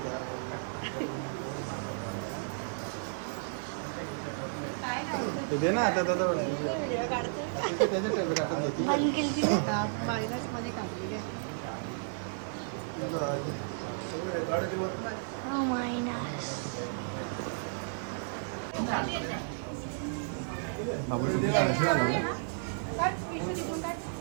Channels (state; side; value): silent; left; 56 dB below the other